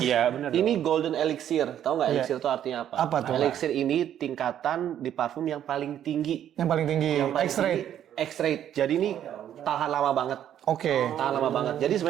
Iya, benar. Ini Golden Elixir. Tahu nggak Elixir itu artinya apa? Apa tuh? Elixir ini tingkatan di parfum yang paling tinggi. Yang paling tinggi. X-ray. X-ray. Jadi ini tahan lama banget. Oke. Tahan lama banget. Jadi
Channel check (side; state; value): left; quieter; 10.5 dB